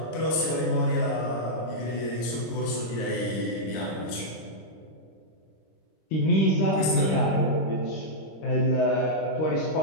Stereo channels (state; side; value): late; right; 26 ms